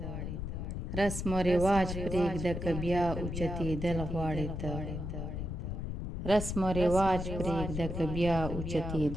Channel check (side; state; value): left; noise; rumble, 4 dB below the sound